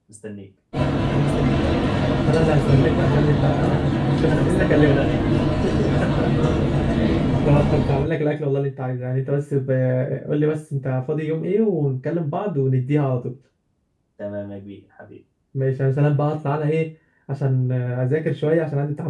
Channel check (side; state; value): both; identical; correlation 1.00